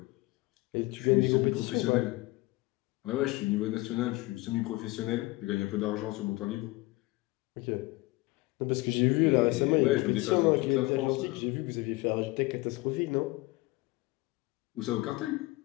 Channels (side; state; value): right; quieter; 21.6 dB